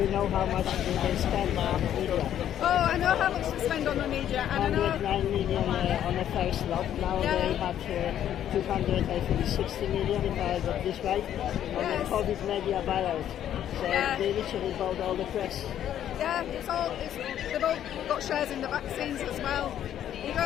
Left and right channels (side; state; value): right; quieter; 10.7 dB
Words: know how much they spend on the media? Oh, I know how much they spend on the media, and I know 109 million on the first lot. Now they have 260 million, if I got this right, on the COVID media buyout. So they literally bought all the press. Yeah, they've all got shares in the vaccines as well. You